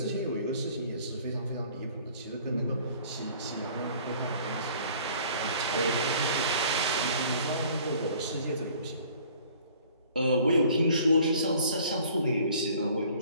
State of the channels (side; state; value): both; inverted; correlation -0.53